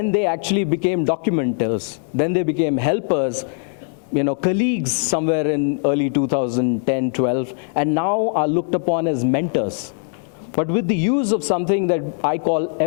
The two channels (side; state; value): right; silent; 65 dB below the other